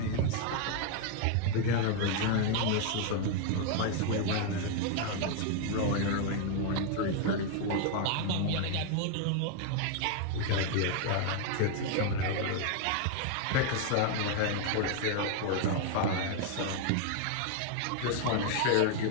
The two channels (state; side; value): different; both; correlation 0.00